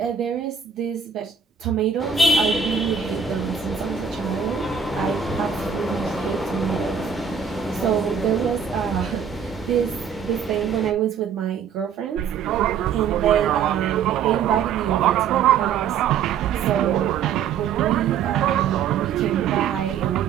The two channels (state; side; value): quieter; left; 7.2 dB